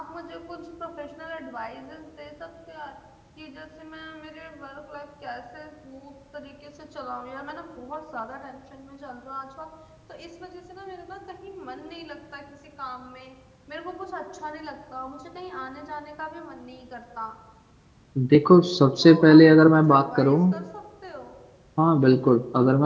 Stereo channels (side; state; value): both; identical; correlation 1.00